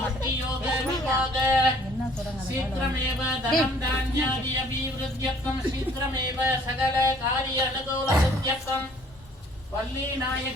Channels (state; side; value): normal; both; correlation 0.57